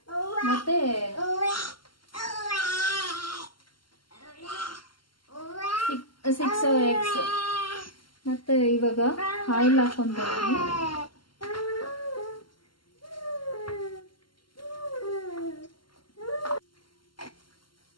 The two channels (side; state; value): right; late; 0.72 ms